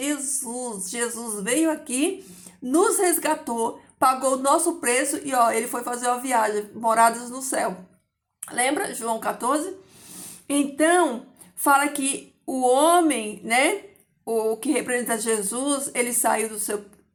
Jesus veio aqui, nos resgatou, pagou o nosso preço e ó, ele foi fazer uma viagem, moradas no céu. Lembra João 14? Então, fala que o homem, né? O que representa Jesus, ele saiu do seu,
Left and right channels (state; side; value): identical; both; correlation 1.00